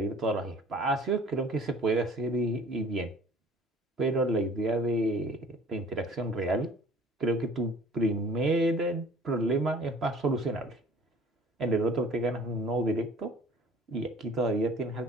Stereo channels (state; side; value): normal; both; correlation 0.50